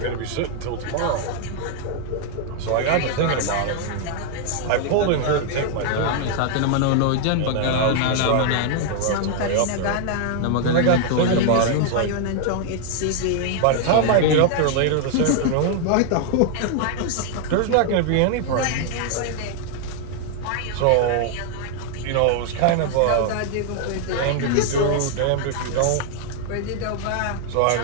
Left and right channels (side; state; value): both; different; correlation 0.00